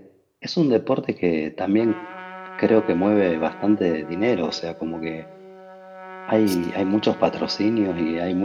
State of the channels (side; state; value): both; identical; correlation 1.00